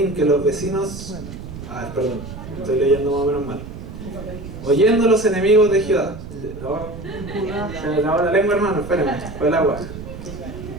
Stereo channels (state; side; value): noise; right; rumble, 11 dB below the sound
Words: que los vecinos... perdón, estoy leyendo más o menos mal. Oyendo los enemigos de Judá. Se me acabó la lengua, hermano, espérenme, fue el agua.